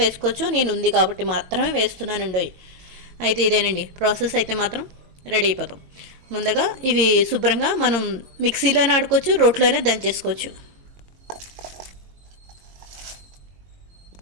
వేసుకోవచ్చు. నేను ఉంది కాబట్టి మాత్రమే వేస్తున్నానండి. అయితే ఇదేనండి ప్రాసెస్. అయితే మాత్రం రెడీ అయిపోతాం. ముందుగా ఇవి శుభ్రంగా మనం మిక్సీలోనే ఆడుకోవచ్చు, రోట్లోనే దంచేసుకోవచ్చు.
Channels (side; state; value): left; late; 22 ms